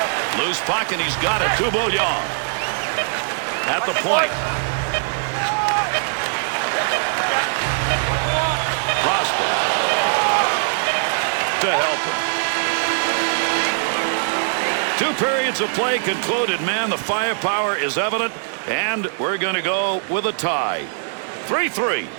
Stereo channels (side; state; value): left; silent; digital silence